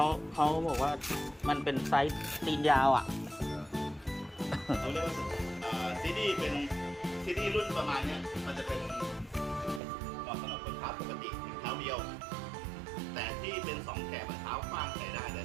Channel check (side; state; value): left; drops out; at 9.8 s